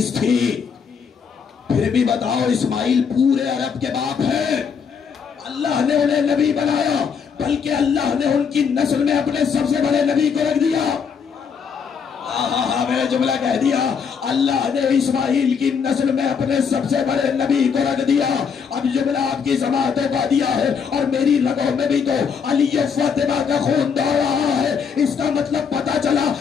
تھی۔ پھر بھی بتاؤ اسماعیل پورے عرب کے باپ ہیں، اللہ نے انہیں نبی بنایا، بلکہ اللہ نے ان کی نسل میں اپنے سب سے بڑے نبی کو رکھ دیا۔ میں نے جملہ کہہ دیا، اللہ نے اسماعیل کی نسل میں اپنے سب سے بڑے نبی کو رکھ دیا۔ اب جملہ آپ کی سماعتوں کا دیا ہے اور میری رگوں میں بھی تو علی و فاطمہ کا خون دوڑ رہا ہے۔ اس کا مطلب پتا چلا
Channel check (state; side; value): quieter; right; 6.4 dB